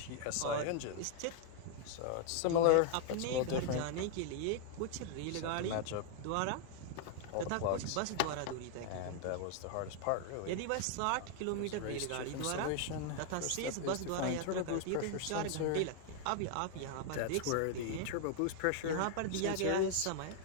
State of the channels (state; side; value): different; both; correlation 0.00